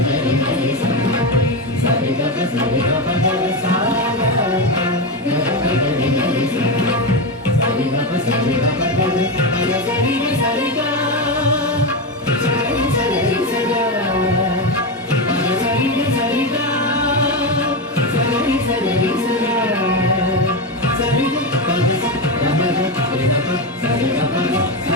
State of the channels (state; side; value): normal; both; correlation 0.13